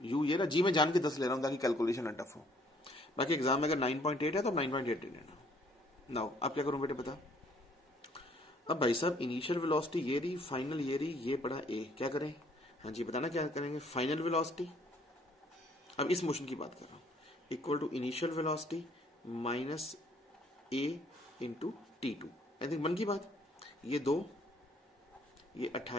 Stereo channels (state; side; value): normal; both; correlation 0.62